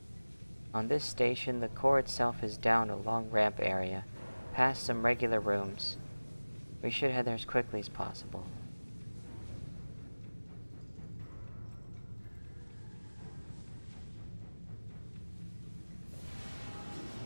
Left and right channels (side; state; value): both; inverted; correlation -1.00